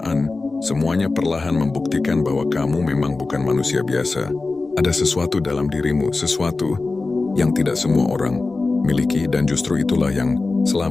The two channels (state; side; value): quieter; right; 3.6 dB